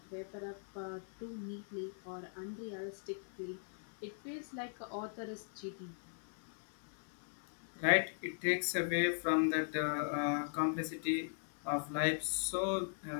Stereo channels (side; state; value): right; silent; digital silence